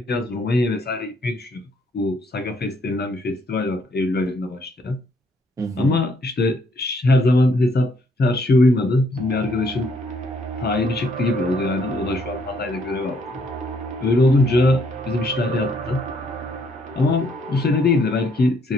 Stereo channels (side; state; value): both; normal; correlation 0.68